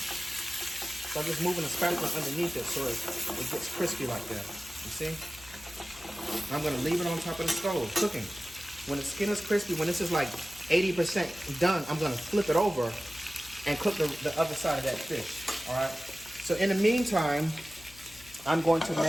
I'm just moving the spatula underneath it so it gets crispy like that. You see? I'm gonna leave it on top of the stove, cooking. When the skin is crispy, when this is like 80% done, I'm gonna flip it over and cook the other side of that fish, all right? So in the meantime, I'm going to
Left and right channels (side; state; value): left; noise; hum, 22 dB below the sound